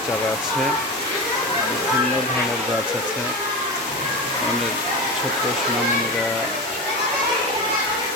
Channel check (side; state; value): both; normal; correlation 0.23